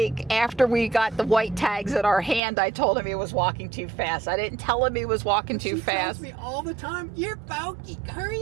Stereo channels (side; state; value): left; drops out; at 2.4 s